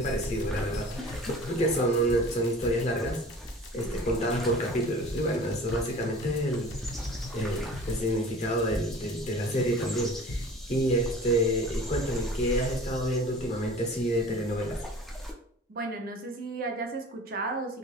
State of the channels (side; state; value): both; normal; correlation 0.43